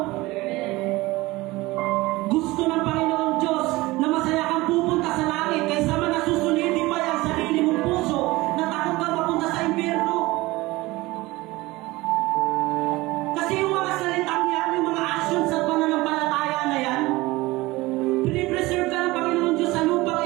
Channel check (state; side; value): quieter; left; 20.4 dB